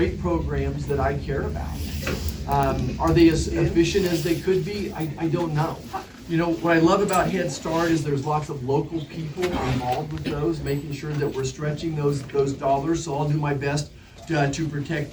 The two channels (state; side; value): identical; both; correlation 1.00